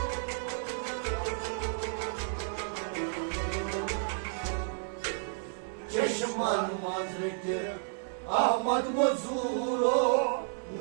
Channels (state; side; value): silent; left; 57 dB below the other